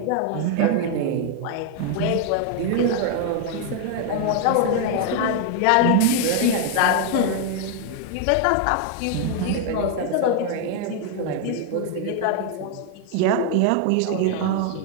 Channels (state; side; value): different; both; correlation 0.00